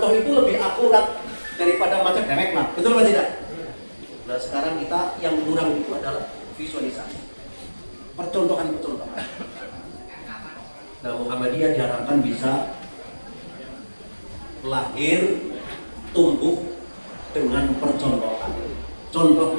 itu lebih akurat daripada baca dewek lah. Betul atau tidak? Nah sekarang kita yang kurang itu adalah visualisasi, percontohan-percontohan. Nah Muhammadiyah diharapkan bisa lahir, tumbuh dengan percontohan.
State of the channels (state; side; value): inverted; both; correlation -1.00